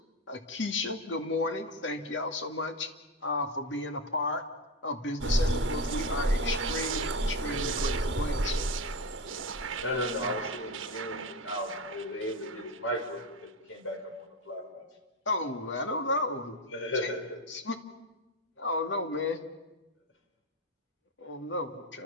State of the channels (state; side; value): normal; both; correlation 0.17